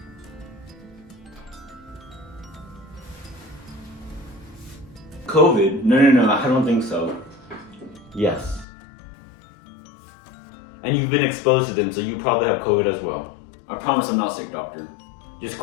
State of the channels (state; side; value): drops out; right; at 8.7 s